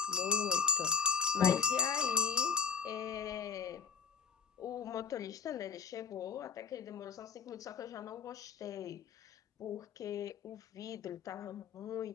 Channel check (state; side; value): quieter; right; 6.2 dB